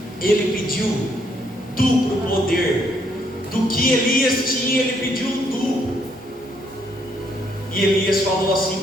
Ele pediu duplo poder. Do que Elias tinha, ele pediu um duplo. E Elias falou assim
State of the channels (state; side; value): normal; both; correlation 0.71